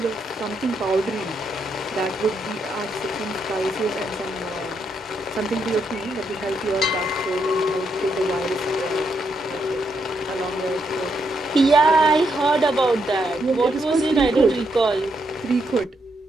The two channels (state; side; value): normal; both; correlation 0.78